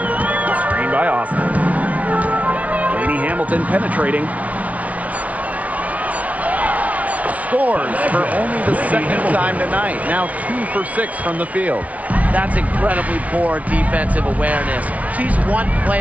Screen by Austin. Laney Hamilton penetrating. Scores for only the second time tonight. Now 2 for 6 from the field. That's incredibly poor defensive awareness. She's one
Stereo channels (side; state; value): left; late; 0.068 ms